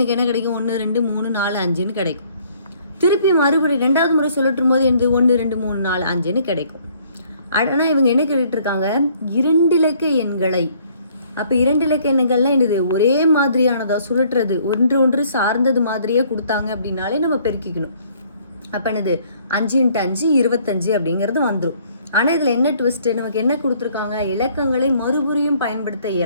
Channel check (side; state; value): both; inverted; correlation -0.62